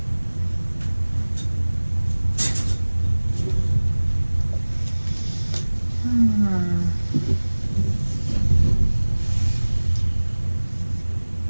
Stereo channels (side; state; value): both; inverted; correlation -1.00